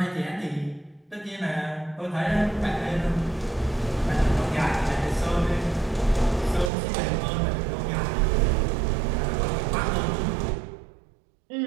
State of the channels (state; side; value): drops out; left; at 6.7 s